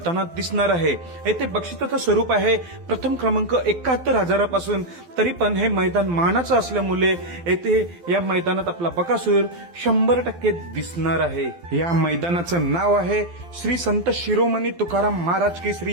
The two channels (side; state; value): left; late; 12 ms